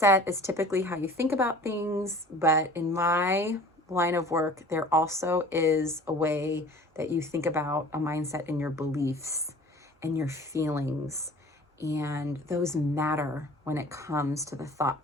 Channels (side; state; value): both; normal; correlation 0.45